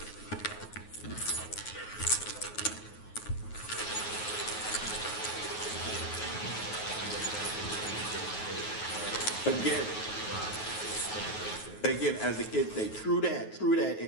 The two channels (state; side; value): late; right; 9.4 ms